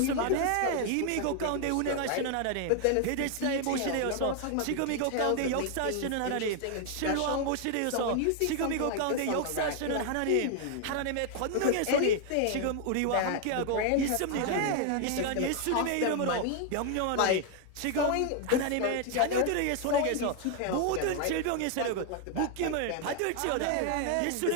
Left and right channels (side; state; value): both; different; correlation 0.00